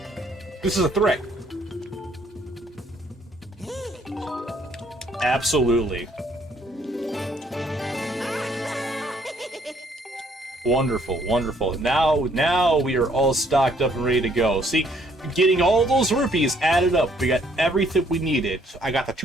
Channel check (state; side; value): normal; both; correlation 0.65